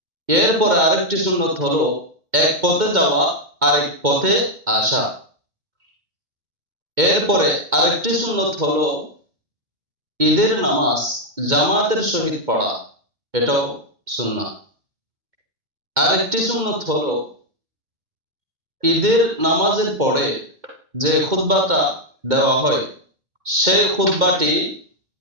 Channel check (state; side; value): late; left; 2.1 ms